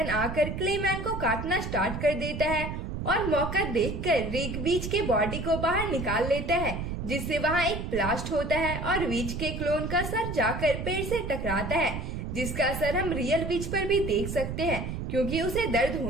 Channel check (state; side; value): noise; right; rumble, 5 dB below the sound